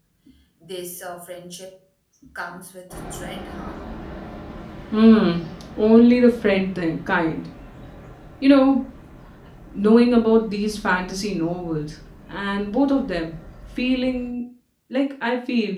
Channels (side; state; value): both; identical; correlation 1.00